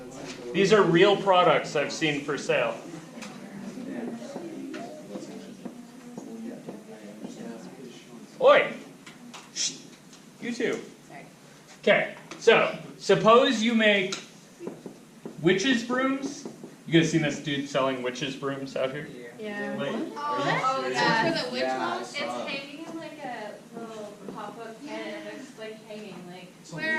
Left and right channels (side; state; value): both; identical; correlation 1.00